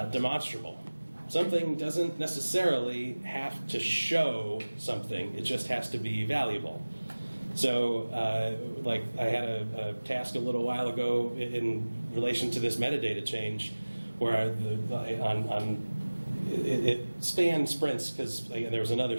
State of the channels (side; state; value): both; inverted; correlation -1.00